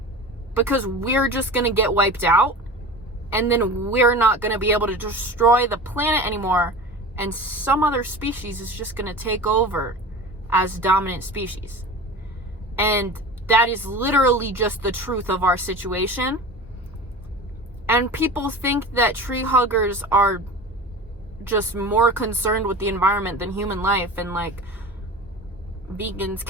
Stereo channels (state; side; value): normal; both; correlation 0.34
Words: because we're just going to get wiped out, and then we're not going to be able to destroy the planet anymore, and some other species is just going to take over as dominant species. And that is literally just the truth of our situation. And people think that tree huggers are just more concerned with the environment than human life, and like vegans